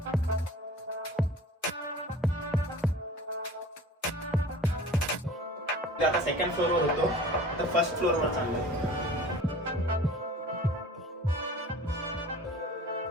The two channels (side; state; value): both; normal; correlation 0.44